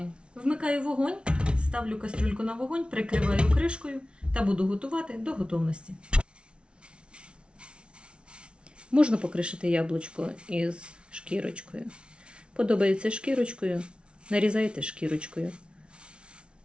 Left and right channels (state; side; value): late; left; 0.058 ms